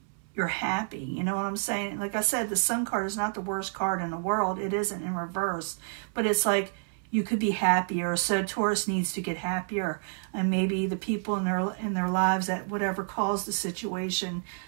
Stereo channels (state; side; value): silent; left; 59 dB below the other